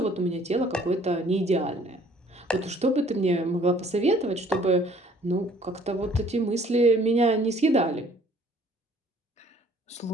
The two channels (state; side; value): normal; both; correlation 0.58